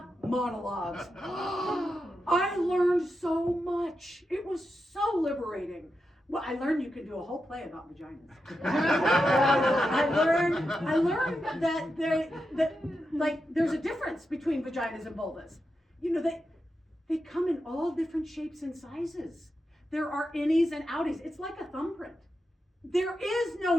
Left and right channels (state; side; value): normal; both; correlation 0.88